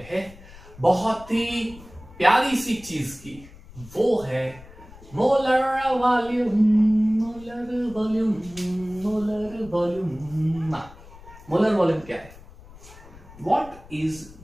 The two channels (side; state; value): left; noise; rumble, 20 dB below the sound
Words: हैं बहुत ही प्यारी सी चीज की, वो है molar volume. Molar volume, molar volume. Molar volume क्या है, व्हाट इज